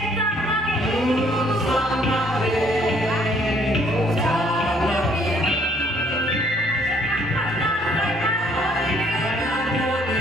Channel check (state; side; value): normal; both; correlation 0.63